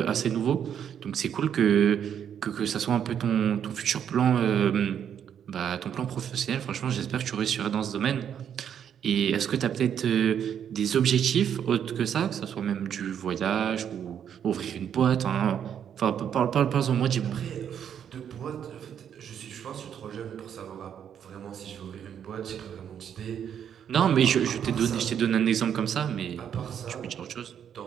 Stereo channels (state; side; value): quieter; left; 8.8 dB